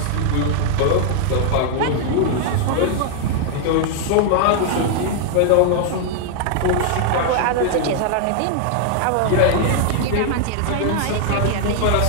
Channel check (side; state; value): both; different; correlation 0.00